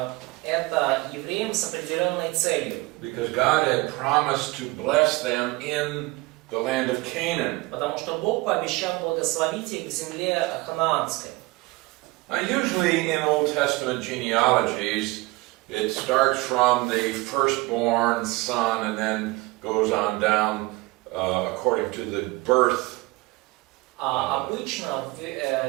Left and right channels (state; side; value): quieter; left; 22.1 dB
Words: это евреям с определенной целью. Because God had promised to bless them in the land of Canaan. Потому что Бог пообещал благословить их в земле ханаанской. Now, usually in Old Testament genealogies, it starts from the firstborn son and then goes on down according to the birth. Обычно в